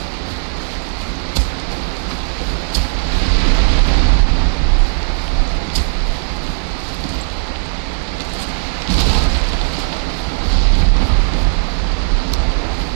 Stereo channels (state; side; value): silent; left; digital silence